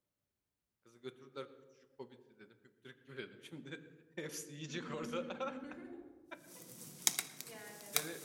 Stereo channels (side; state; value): both; identical; correlation 1.00